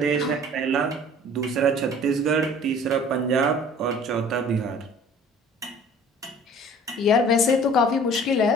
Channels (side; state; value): both; normal; correlation 0.48